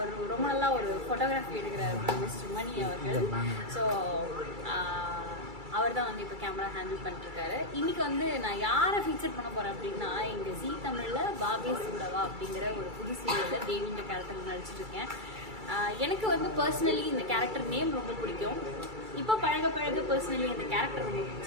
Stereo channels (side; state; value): left; late; 2.3 ms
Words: ரொம்ப நல்லா ஒரு ஃபோட்டோகிராஃபி எடுக்கிறார் மிஸ்டர் மணி அவர்கள். ஸோ அவர் தான் வந்து இப்போ கேமரா ஹேண்டில் பண்ணிட்டுருக்காரு. இன்றைக்கி வந்து நான் யாரை ஃபீச்சர் பண்ண போகிறேன் அப்படின்னா, எங்கள் ஜீ தமிழில் பாகே சூடவா அப்படிங்கிற ஒரு புது சீரியலில் தேவின்ற கேரக்டர் நடிச்சிட்ருக்கேன். எனக்கு வந்து பர்சனலி இந்த கேரக்டர் நேம் ரொம்ப பிடிக்கும். இப்போ பழக பர்சனலி அந்த கேரக்டர் ரொம்ப